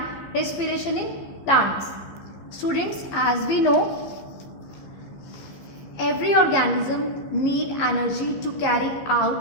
respiration in plants. Students, as we know, every organism need energy to carry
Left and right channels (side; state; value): right; late; 15 ms